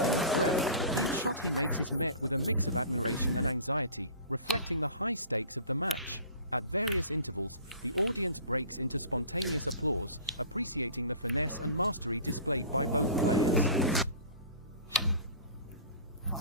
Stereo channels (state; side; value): inverted; both; correlation -0.41